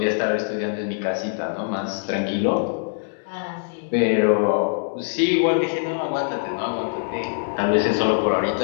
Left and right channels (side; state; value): right; silent; digital silence